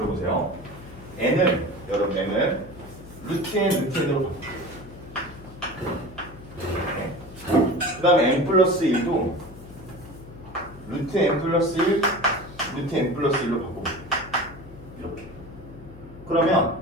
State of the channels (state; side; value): noise; left; hum, 17 dB below the sound